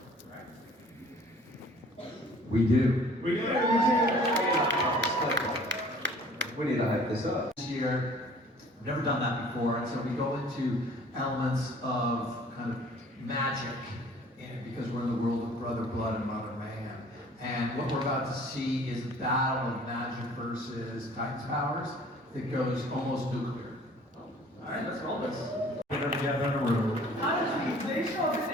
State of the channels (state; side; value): normal; both; correlation 0.51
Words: Right? We do. We do. we need to hype this up. This year, we've never done that before, and so we go into elements of kind of magic in it because we're in the world of Brother Blood and Mother Mayhem. And what we're about to see is a battle of magic versus Titan's powers that goes almost nuclear. All right, let's roll this. them together in a room. Honestly, they show up in